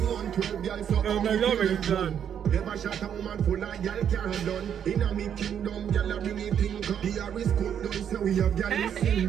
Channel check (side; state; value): left; quieter; 8.7 dB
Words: on 12, girl, so Oh my God, it's done. Never shot a woman full of girl can't done. In a me kingdom, girl a bring it thing come. The Harris cook down, so we have girl in